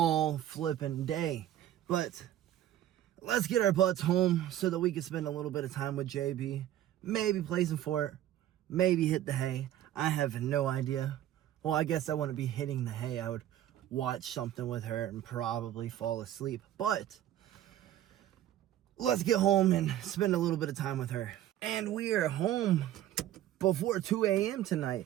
flipping day. But let's get our butts home so that we can spend a little bit of time with JB. Maybe play some fort, maybe hit the hay. I have no idea. Well, I guess I wouldn't be hitting the hay. I would watch something with her and probably fall asleep. But let's get home and spend a little bit of time with her. And we are home before 2 a.m.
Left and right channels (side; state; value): left; quieter; 12.4 dB